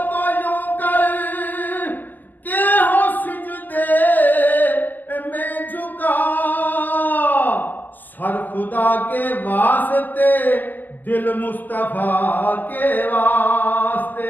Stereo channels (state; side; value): late; right; 0.085 ms